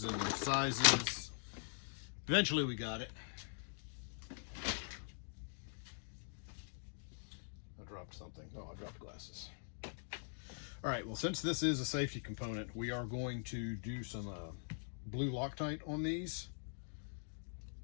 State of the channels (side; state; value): right; silent; digital silence